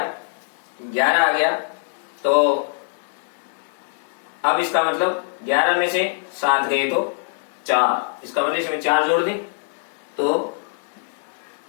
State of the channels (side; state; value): right; silent; 64 dB below the other